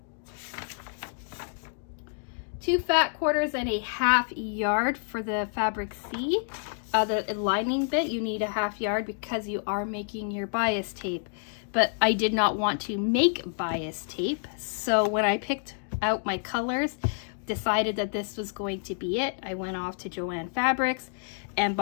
2 fat quarters and a 1/2 yard for the fabric C. The lining bit, you need a 1/2 yard because you are making your bias tape. But I did not want to make bias tape, so when I picked out my colors, decided that this was going to be it, I went off to Joann Fabrics and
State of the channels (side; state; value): right; silent; digital silence